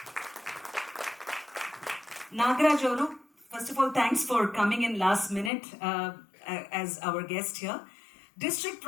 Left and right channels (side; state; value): right; drops out; at 5.5 s